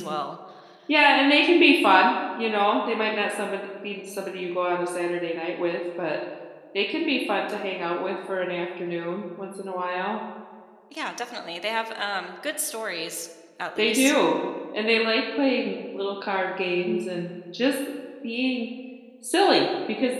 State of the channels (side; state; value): both; identical; correlation 1.00